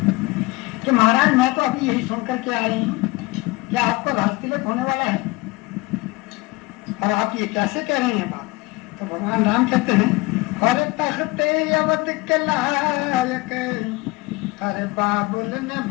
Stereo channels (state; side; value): quieter; right; 22.9 dB